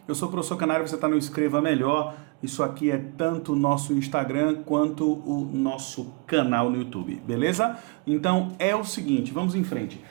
Eu sou o professor Canário, você está no Escreva Melhor. Isso aqui é tanto o nosso Instagram quanto o nosso canal no YouTube, beleza? Então é o seguinte, vamos em frente.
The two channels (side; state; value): left; quieter; 28.3 dB